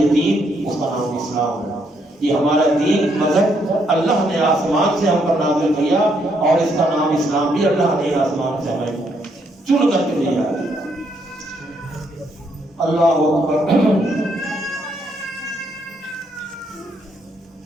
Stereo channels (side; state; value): both; normal; correlation 0.73